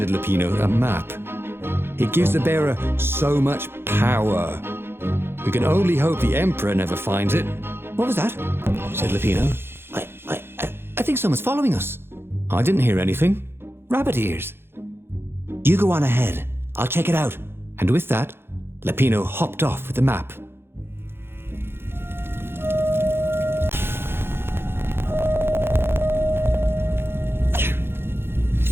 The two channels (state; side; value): late; left; 0.11 ms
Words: Lupino a map. It gives the bearer so much power. We can only hope the Emperor never finds it. What was that? Said Lupino. I think someone's following us. I didn't hear anything. Rabbit ears. You go on ahead. I'll check it out. And with that, Lupino hopped off with the map.